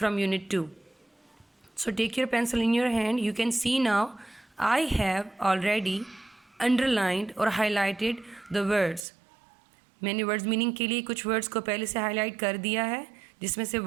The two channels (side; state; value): left; drops out; at 9.1 s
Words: unit 2. So take your pencil in your hand. You can see now I have already underlined or highlighted the words. मैंने words meaning के लिए कुछ वर्ड्स को पहले से highlight कर दिया है, जिसमें से